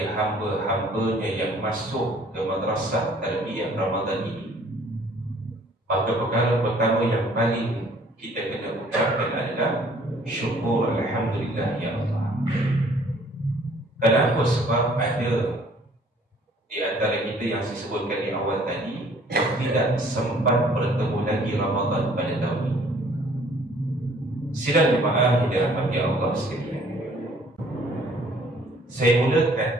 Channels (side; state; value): both; normal; correlation 0.57